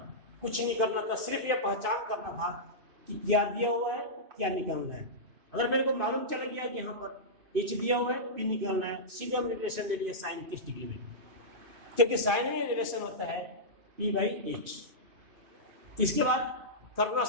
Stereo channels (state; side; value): late; left; 2.5 ms